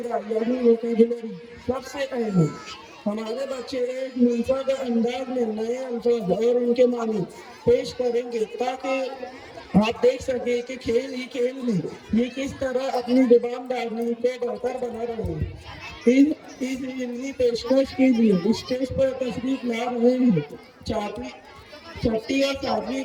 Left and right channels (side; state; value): both; identical; correlation 1.00